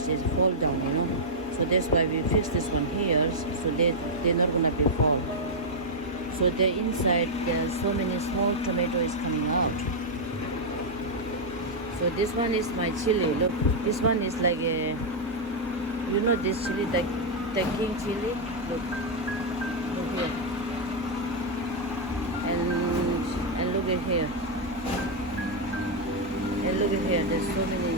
is fall down, so that's why we fix this one here, so they're not gonna be fall. So the inside there's so many small tomatoes coming out. So this one is my chili. Look, this one is like a, this chili, the king chili. Look here, and look at here, and look at here. There's so many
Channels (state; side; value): normal; both; correlation -0.04